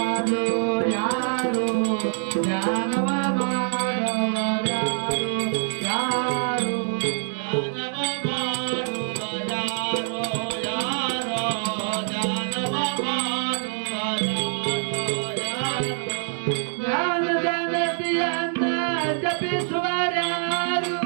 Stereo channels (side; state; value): left; silent; digital silence